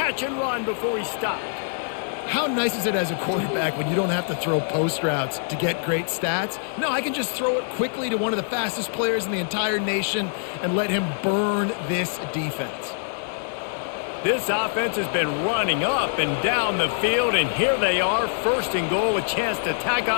and run before he stopped. How nice is it as a quarterback when you don't have to throw post routes to get great stats? No, I can just throw it quickly to one of the fastest players in the entire nation and let him burn this defense. This offense has been running up and down the field, and here they are, first and goal, a chance to tack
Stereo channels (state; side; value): silent; right; 62 dB below the other